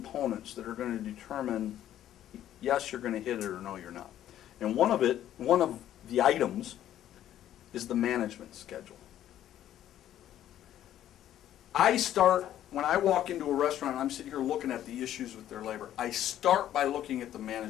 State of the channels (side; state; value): right; quieter; 11.8 dB